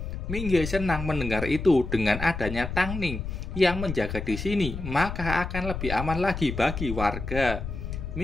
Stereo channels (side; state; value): left; noise; rumble, 6 dB below the sound